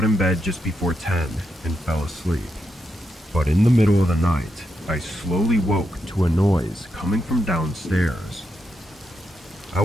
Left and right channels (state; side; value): normal; both; correlation 0.84